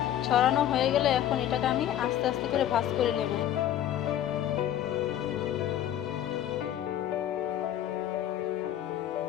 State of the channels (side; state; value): right; quieter; 11.4 dB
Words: ছড়ানো হয়ে গেলে এখন এটাকে আমি আস্তে আস্তে করে ভাঁজ করে নেব।